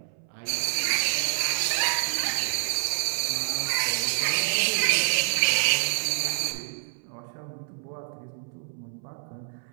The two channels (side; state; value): left; silent; 60 dB below the other